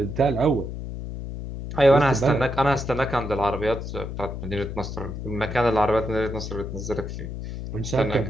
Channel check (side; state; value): left; noise; hum, 7 dB below the sound